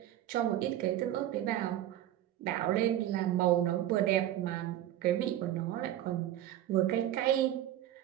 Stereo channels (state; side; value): quieter; left; 12.6 dB